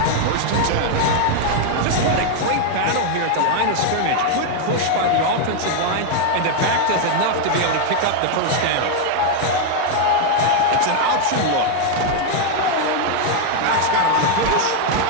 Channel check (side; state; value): both; different; correlation 0.00